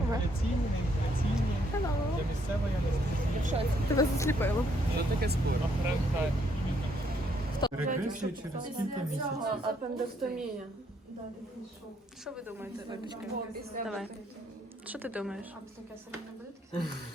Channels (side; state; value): both; normal; correlation 0.70